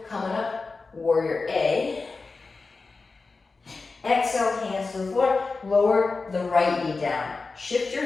coming up, warrior A. Exhale, hands to the floor, lower the right knee down. Shift your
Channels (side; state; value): right; quieter; 4.0 dB